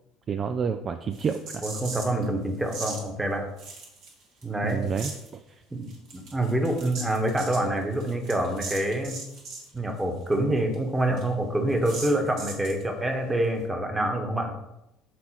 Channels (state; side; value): normal; both; correlation 0.73